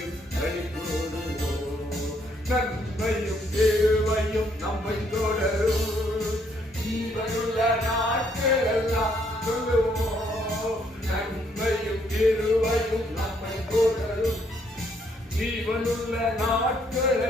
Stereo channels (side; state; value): both; normal; correlation 0.70